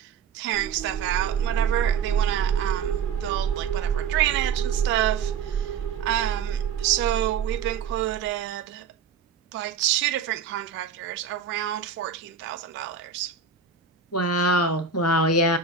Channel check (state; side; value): quieter; left; 6.4 dB